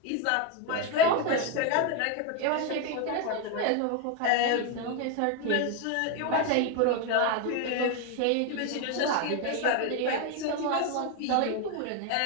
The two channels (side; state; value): both; different; correlation 0.02